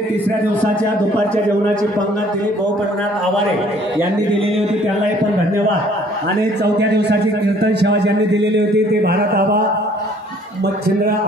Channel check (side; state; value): both; normal; correlation 0.58